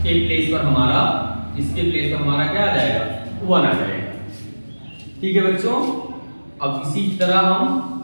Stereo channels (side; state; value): both; inverted; correlation -1.00